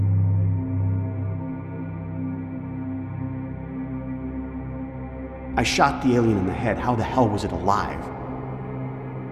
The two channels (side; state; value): both; identical; correlation 1.00